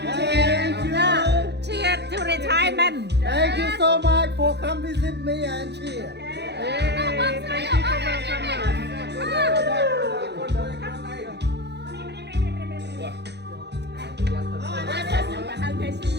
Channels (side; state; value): left; late; 0.49 ms